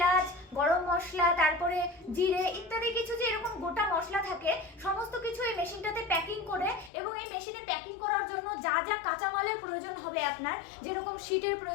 গরম মশলা, তারপরে জিরে ইত্যাদি কিছু যে এরকম গোটা মশলা থাকে সমস্ত কিছু এই মেশিনটাতে প্যাকিং করে, এবং এই মেশিনে প্যাকিং করার জন্য যা যা কাঁচামালের প্রয়োজন হবে আপনার, যেরকম শিটের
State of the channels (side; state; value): right; drops out; at 6.9 s